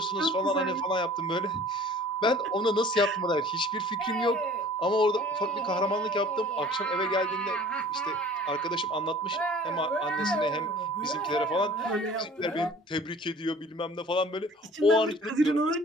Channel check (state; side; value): normal; both; correlation 0.48